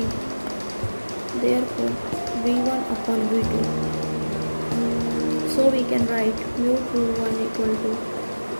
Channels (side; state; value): both; inverted; correlation -1.00